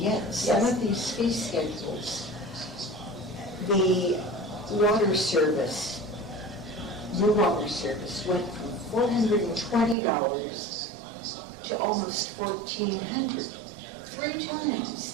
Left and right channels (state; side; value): drops out; left; at 10.0 s